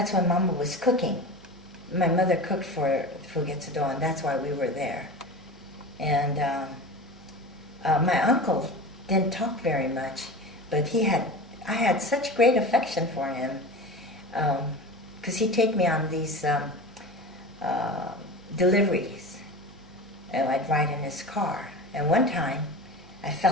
when Mama was cooking. My mother cooked for Fugetsudo, and that's why we were there. And my uncle didn't talk very much, but I had such great affection for him, because he'd take me on these deliveries, and I'd ride in his car. And one time, I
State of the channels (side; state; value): right; noise; hum, 25 dB below the sound